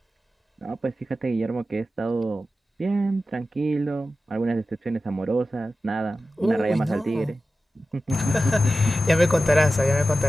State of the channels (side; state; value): both; normal; correlation 0.94